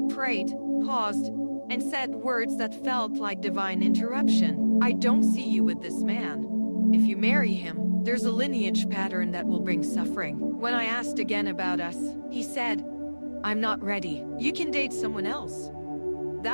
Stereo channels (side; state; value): both; inverted; correlation -1.00